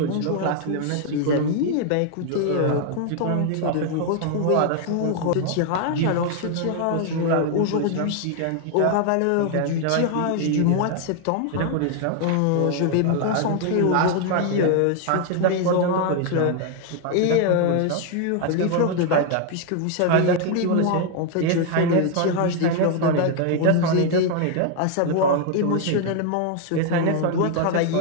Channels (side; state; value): both; different; correlation 0.00